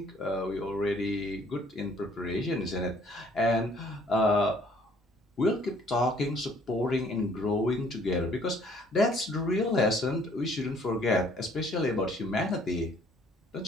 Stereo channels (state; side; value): normal; both; correlation 0.59